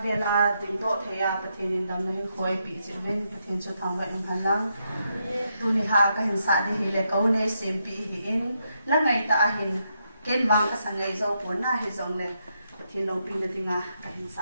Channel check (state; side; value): inverted; both; correlation -0.80